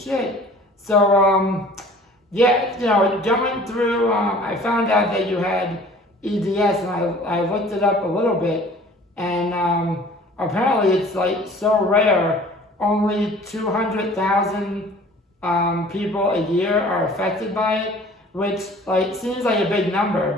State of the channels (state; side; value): normal; both; correlation 0.48